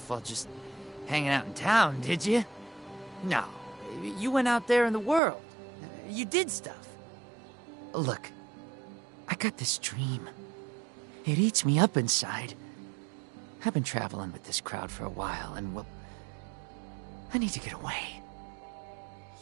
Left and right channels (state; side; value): drops out; left; at 5.2 s